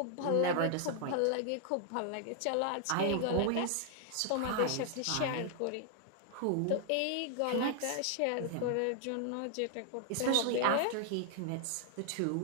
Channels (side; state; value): both; different; correlation 0.00